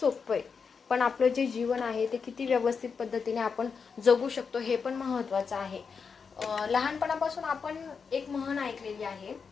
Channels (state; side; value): quieter; right; 5.7 dB